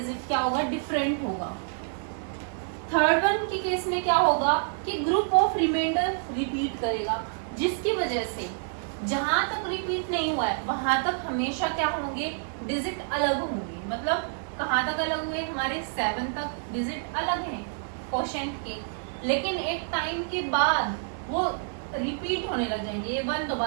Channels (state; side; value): silent; left; digital silence